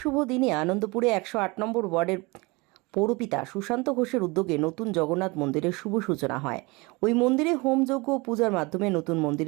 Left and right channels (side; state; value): left; quieter; 25.5 dB